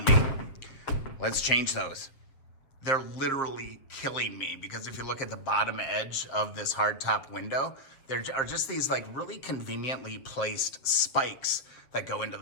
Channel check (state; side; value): late; right; 7.6 ms